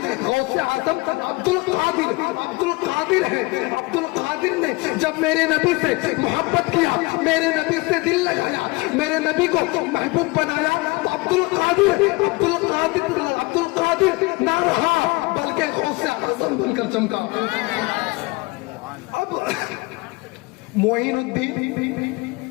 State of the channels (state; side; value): quieter; right; 24.8 dB